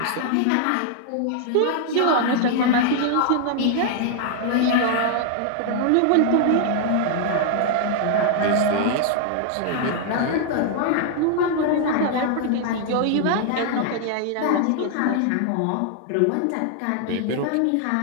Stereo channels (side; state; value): both; different; correlation 0.00